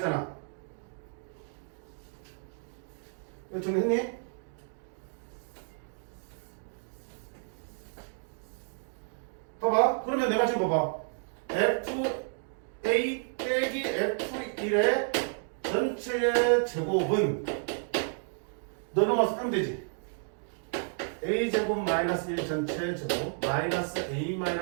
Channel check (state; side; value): silent; left; 57 dB below the other